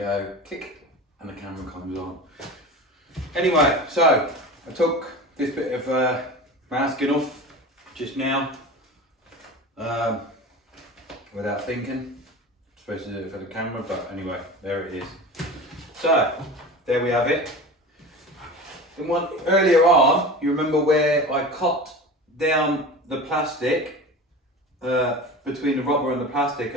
click and the camera comes on. Anyway, so I took this bit of masking off just now without thinking. Supposed to do it for the camera, but anyway, there it is. So there we have it. And one earlier on, you remember where I cut down the plastic between the rubber and the plastic,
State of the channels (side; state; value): both; normal; correlation 0.33